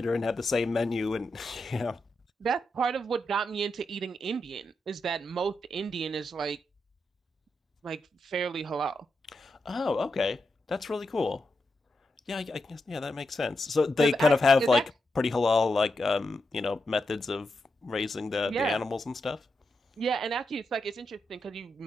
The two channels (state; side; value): normal; both; correlation 0.85